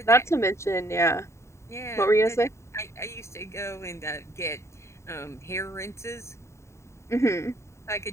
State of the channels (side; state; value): right; late; 0.14 ms